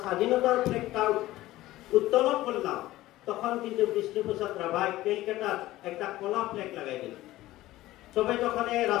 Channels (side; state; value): right; quieter; 16.4 dB